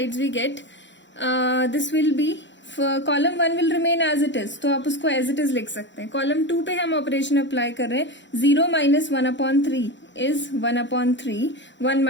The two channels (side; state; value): right; late; 0.53 ms